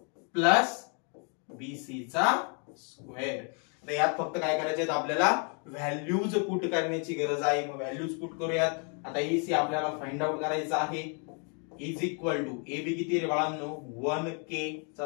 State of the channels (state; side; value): quieter; right; 39.1 dB